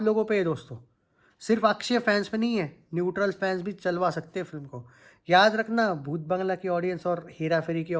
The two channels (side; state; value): both; identical; correlation 1.00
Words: लोगों पे है दोस्तों, सिर्फ अक्षय फैंस पे नहीं है, न्यूट्रल फैंस भी चलवा सकते हैं फिल्म को। याद रखना, भूत बंगला की ऑडियंस और हेरा फेरी की